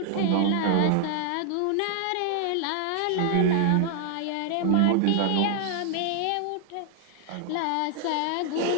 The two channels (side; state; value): both; different; correlation 0.00